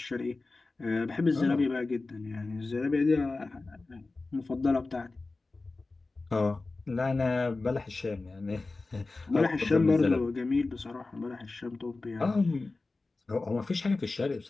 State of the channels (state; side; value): quieter; right; 3.5 dB